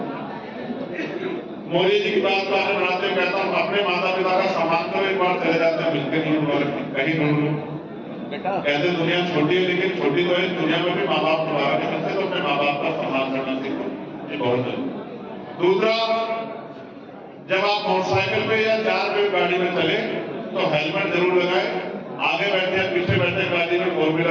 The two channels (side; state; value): both; identical; correlation 1.00